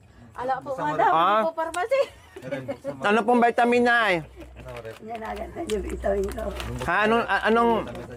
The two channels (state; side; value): identical; both; correlation 1.00